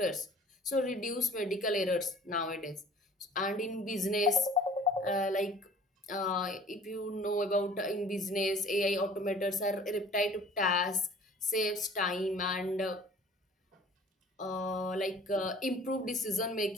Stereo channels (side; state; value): both; normal; correlation 0.49